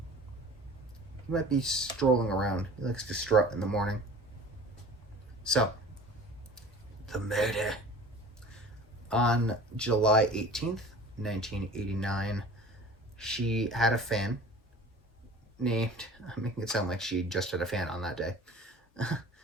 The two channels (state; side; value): normal; both; correlation 0.42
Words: He might be strolling around. He likes to strut in the morning. So, the murder. On July 18th, 1989, she had a fan named, I'm making it sound like she just had a fan on that day.